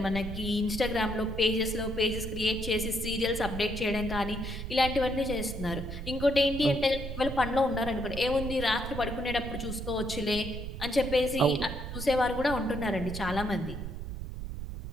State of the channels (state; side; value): noise; right; rumble, 7 dB below the sound